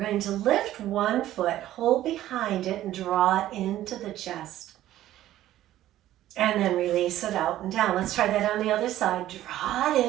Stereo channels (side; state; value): left; quieter; 13.6 dB